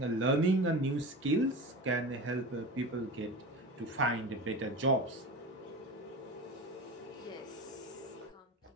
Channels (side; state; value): both; normal; correlation 0.29